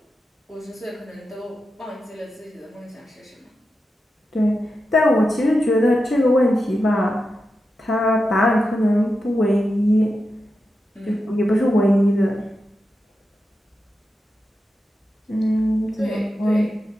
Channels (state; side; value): normal; both; correlation 0.89